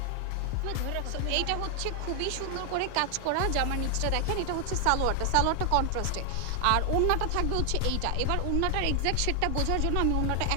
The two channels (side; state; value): both; different; correlation 0.00